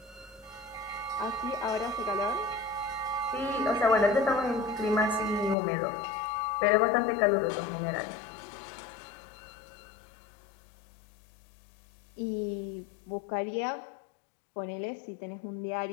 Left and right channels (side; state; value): right; drops out; at 5.6 s